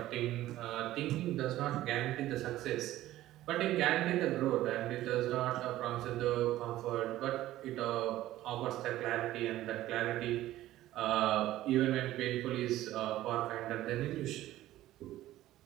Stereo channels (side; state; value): left; quieter; 14.8 dB